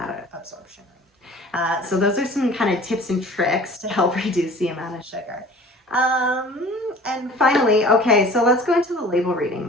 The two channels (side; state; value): both; normal; correlation 0.45